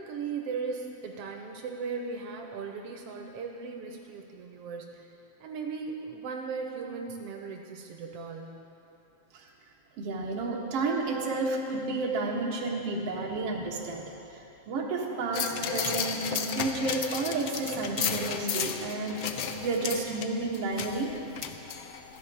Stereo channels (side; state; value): left; late; 7.5 ms